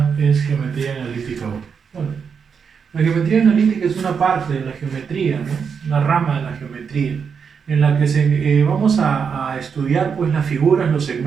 es geometría analítica 1. Bueno, la geometría analítica es una parte de la geometría, ¿no? Una rama de la geometría, en la que vamos a estudiar pues, las figuras, los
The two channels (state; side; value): quieter; left; 6.3 dB